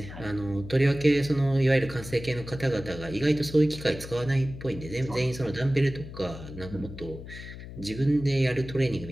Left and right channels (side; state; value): left; noise; hum, 12 dB below the sound